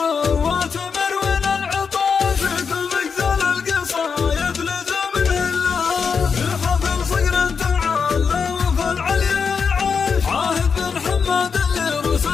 مروين العطاش كل مقزل القصايد لزم نهلها. في حفل صقر تعالى وفي العليا عاش عاهد بن حماد اللي روس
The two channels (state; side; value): quieter; right; 5.9 dB